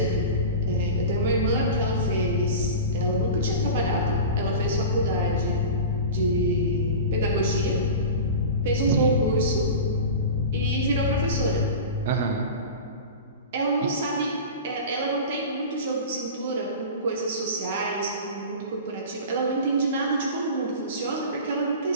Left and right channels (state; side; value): inverted; both; correlation -0.31